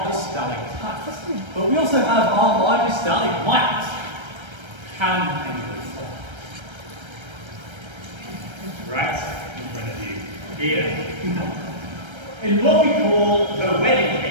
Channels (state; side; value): late; left; 1.3 ms